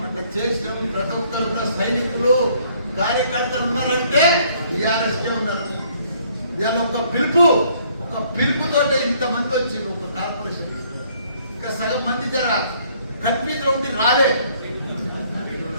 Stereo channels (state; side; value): inverted; both; correlation -0.64